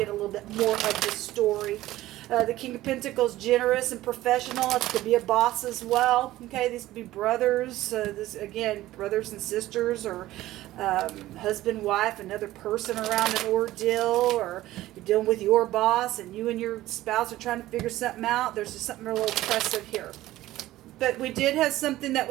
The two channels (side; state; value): left; quieter; 15.8 dB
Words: a little bit more of the story. The King of Pentacles, generous and professional. It could be a boss as well. Okay, these could be brothers. This again, brothers and sisters, or husband, wife, another person around an ordeal, or you're dealing with your boss and you and your spouse are trying to figure something out. There's just something real oppressive here. But we did have something that